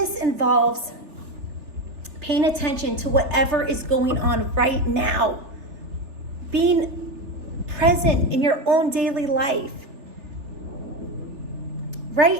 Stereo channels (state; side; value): late; left; 3.4 ms